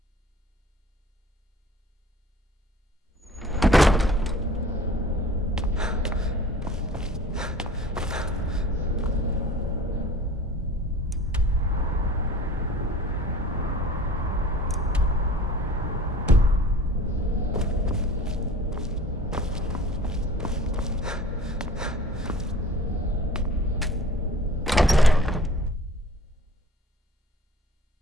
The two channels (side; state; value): both; normal; correlation 0.46